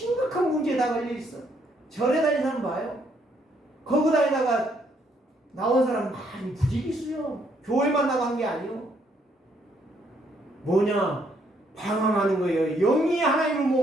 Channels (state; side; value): normal; both; correlation 0.71